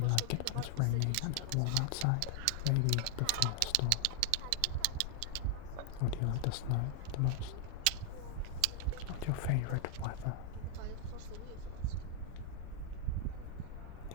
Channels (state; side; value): different; both; correlation 0.00